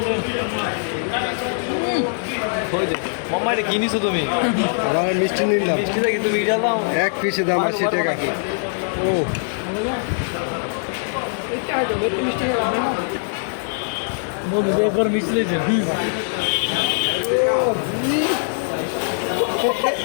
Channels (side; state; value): right; silent; digital silence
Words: মাম্মা এটা কিনিছো তুমি আমার মিষ্টি নিলাম মিষ্টি দেখি তুমি এটা দাও এক পিসে দাম 80 টাকা ও বন্ধু একবার মিষ্টি লেগেছে